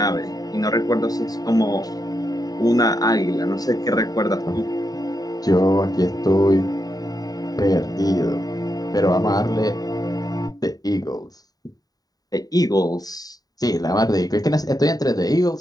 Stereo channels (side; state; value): right; late; 0.18 ms